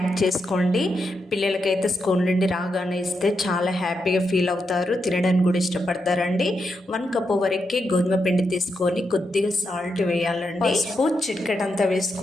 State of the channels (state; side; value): normal; both; correlation 0.84